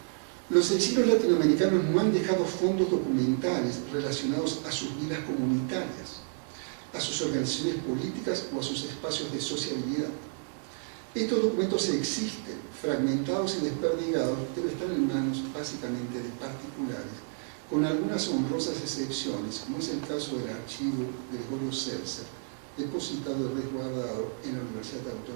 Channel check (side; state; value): left; silent; 57 dB below the other